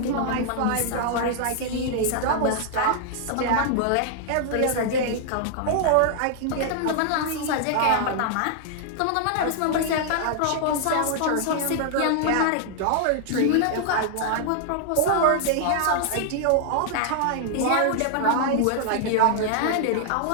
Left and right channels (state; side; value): different; both; correlation 0.00